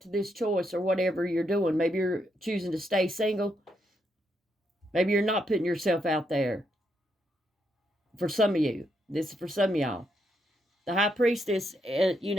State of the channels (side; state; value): both; normal; correlation 0.78